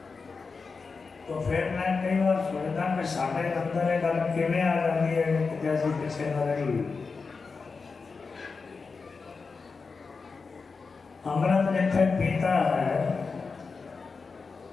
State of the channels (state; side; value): quieter; right; 4.6 dB